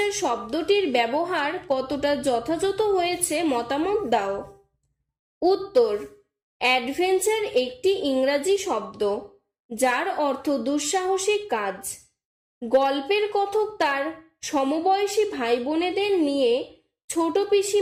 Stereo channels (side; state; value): both; identical; correlation 1.00